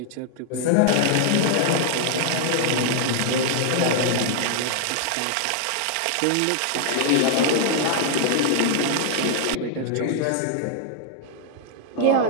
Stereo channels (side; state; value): both; different; correlation 0.00